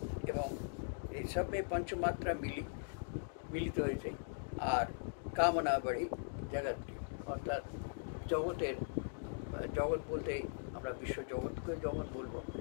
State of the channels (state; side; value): silent; right; digital silence